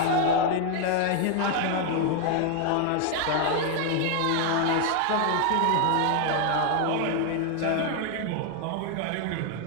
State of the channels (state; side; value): different; both; correlation 0.00